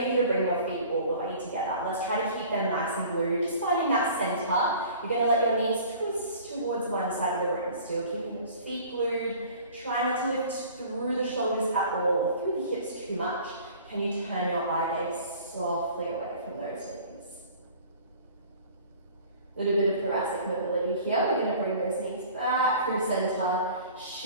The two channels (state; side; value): inverted; both; correlation -0.47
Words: you to bring your feet all the way together. Let's try to keep them nice and glued. Just finding that center. You're going to let your knees twist towards one side of the room. Still keeping those feet glued. Try not to lift through the shoulders at all, through the hips too much. Can you turn your eye gaze softly away from those knees? A little bit of thoracic mobility here. We're going to bring those knees back through center.